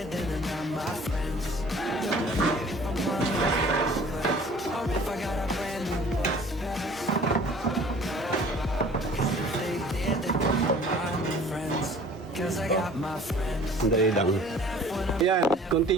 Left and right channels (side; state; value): both; normal; correlation 0.50